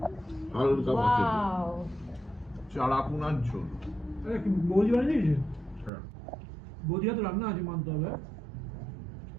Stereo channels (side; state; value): left; drops out; at 5.9 s